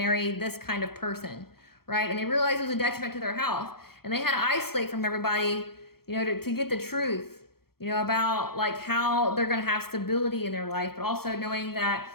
this kind of person, right? And they realized it was a detriment to their health. And they had to isolate from everybody, you know, to get the truth, you know, about like how they're gonna have stability in their life, but also knowing that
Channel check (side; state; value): right; late; 0.95 ms